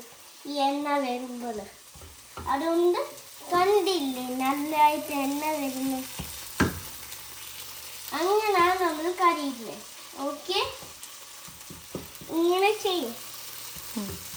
ഈ എണ്ണ വരുമ്പോൾ. അതുകൊണ്ട് കണ്ടില്ലേ നല്ലതായിട്ട് എണ്ണ വരുന്നത്. അങ്ങനെയാണ് നമ്മൾ കറിയുന്നത്. ഓക്കെ, ഇങ്ങനെ ചെയ്യും.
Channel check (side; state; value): both; identical; correlation 1.00